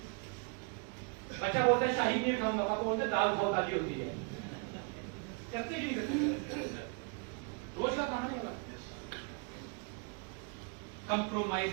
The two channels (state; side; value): quieter; left; 36.1 dB